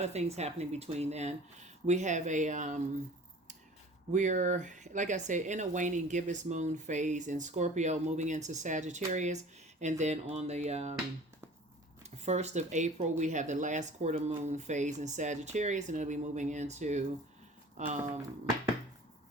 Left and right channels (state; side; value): normal; both; correlation 0.44